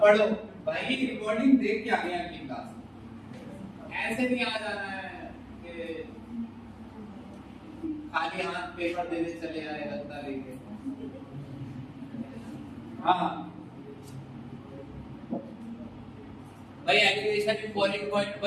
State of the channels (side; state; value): both; identical; correlation 1.00